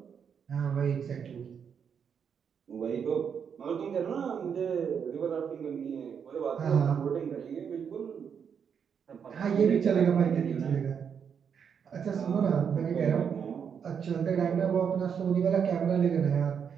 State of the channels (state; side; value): quieter; left; 7.2 dB